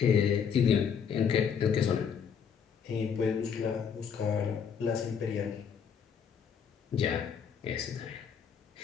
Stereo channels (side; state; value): right; quieter; 7.1 dB